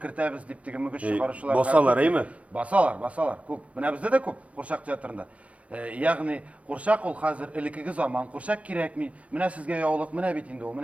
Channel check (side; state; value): left; late; 0.064 ms